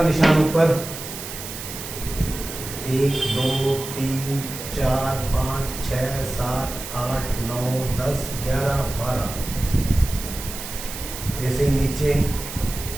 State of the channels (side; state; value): right; noise; hiss, 9 dB below the sound